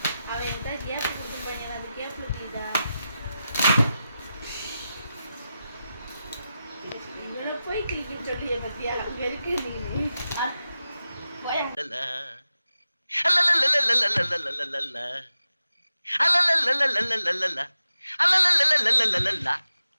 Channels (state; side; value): inverted; both; correlation -0.92